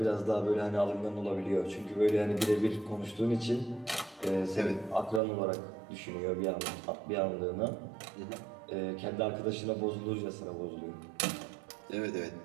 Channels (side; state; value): left; drops out; at 5.2 s